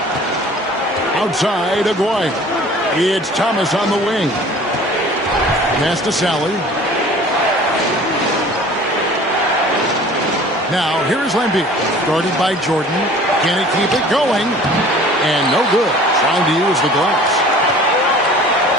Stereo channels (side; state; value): both; normal; correlation 0.47